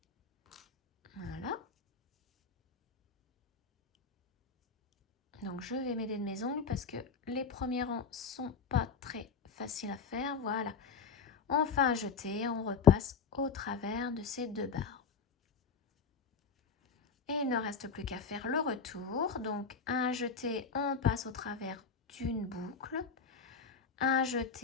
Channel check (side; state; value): right; quieter; 5.5 dB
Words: Voilà. Donc, je vais m'aider de mes ongles parce que les premiers rangs sont pas très faciles à faire. Voilà. On fait un jeté, on repasse au travers de ces deux barres. Et il ne reste plus qu'à faire le retour. Donc, un jeté, on passe au travers d'une boucle. Un